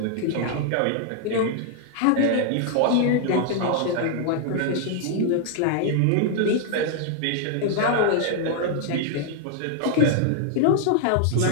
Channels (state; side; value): different; both; correlation 0.00